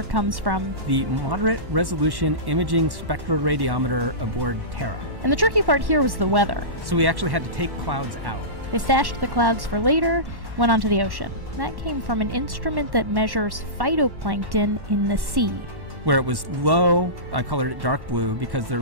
comes from the moderate resolution imaging spectroradiometer aboard Terra. And the tricky part here was the weather. So we actually had to take clouds out. They stashed the clouds for later, went onto the ocean. That came from an instrument that measures phytoplankton in the sea. Where it was low, I colored it dark blue because they're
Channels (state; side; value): late; left; 1.1 ms